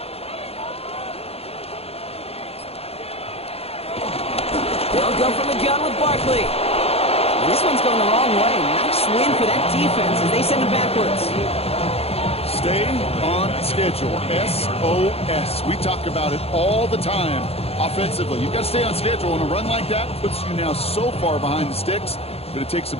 They'll go from the gun with Barkley. And this one's going the wrong way. Nice win for that defense as they send it backwards. Stay on schedule. SOS. We talk about it all the time offensively. You've got to stay on schedule, and a run like that puts you now so far behind the sticks that it takes some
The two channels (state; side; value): late; right; 0.29 ms